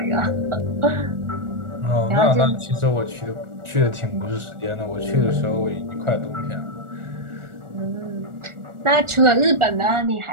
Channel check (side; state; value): left; late; 1.4 ms